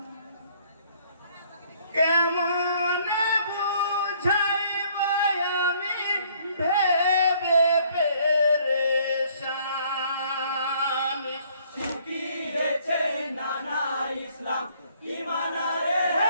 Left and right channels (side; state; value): both; inverted; correlation -0.62